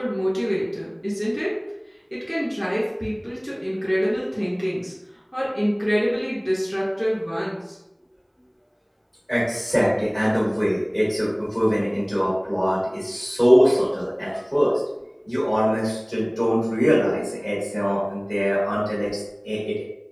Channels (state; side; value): identical; both; correlation 1.00